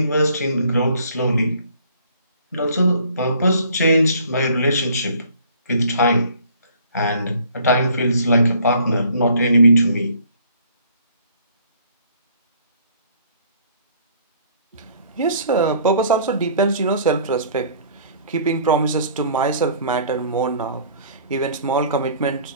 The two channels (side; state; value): both; inverted; correlation -0.56